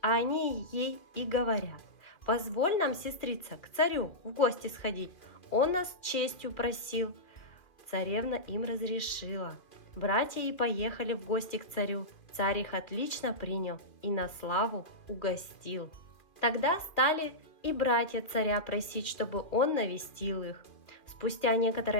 а они ей и говорят: «Позволь нам, сестрица, к царю в гости сходить. Он нас честью просил». Царевна им разрешила. Братья и поехали в гости к царю. Царь их отлично принял и на славу угостил. Тогда стали и братья царя просить, чтобы он навестил их. Спустя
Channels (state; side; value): late; right; 2.2 ms